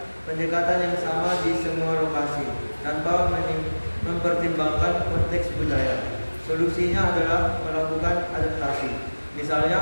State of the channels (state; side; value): inverted; both; correlation -1.00